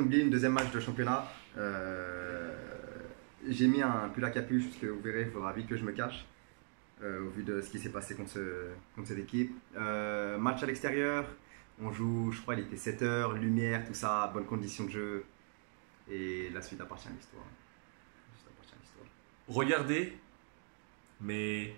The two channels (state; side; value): silent; left; 52 dB below the other